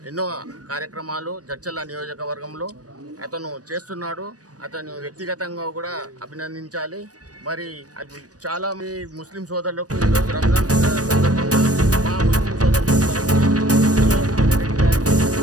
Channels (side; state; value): left; late; 0.68 ms